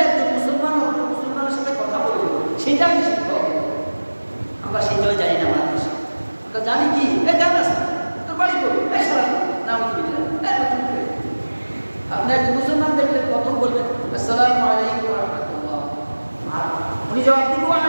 একজন মুসলমান অন্য মুসলমানের সাথে কথা বলবো সেটা আমি শিখবো। আমরা সেটাও জানি না আমাদের দেশে। আমরা জানি কি গান আছে, তোর বাড়ি করবো, নাম কি আপনি একজন মুসলমান দেখলে প্রথম বলবেন আসসালামু আলাইকুম ওয়া রাহমাতুল্লাহ, আর উনি জবাব দিবেন ওয়া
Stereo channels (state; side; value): inverted; both; correlation -1.00